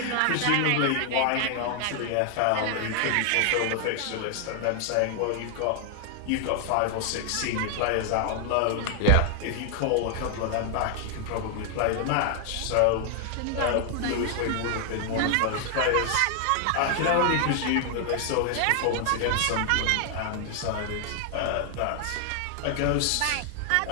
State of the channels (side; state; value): both; different; correlation 0.00